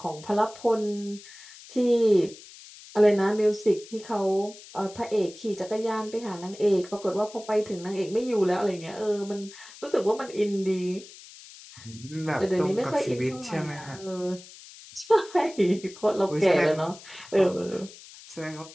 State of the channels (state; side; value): noise; left; hiss, 18 dB below the sound